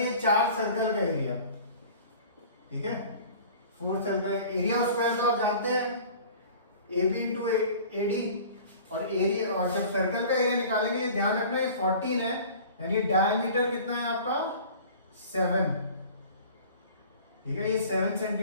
ये 4 सर्कल का एरिया, ठीक है, 4 सर्कल एरिया ऑफ स्क्वायर तो आप जानते हैं AB इंटू AD, और एरिया, और जब सर्कल का एरिया निकालेंगे ध्यान रखना है 14 है, यानी डायमीटर कितना है आपका 7, ठीक है, ये 7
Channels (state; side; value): inverted; both; correlation -0.44